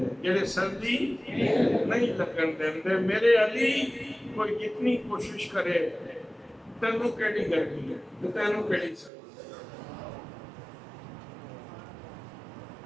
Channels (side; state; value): left; drops out; at 9.1 s